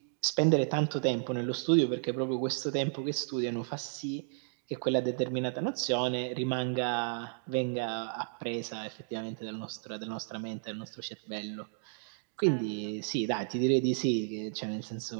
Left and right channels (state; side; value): silent; left; digital silence